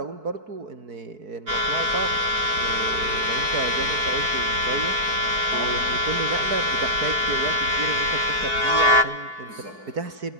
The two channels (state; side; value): late; left; 4.6 ms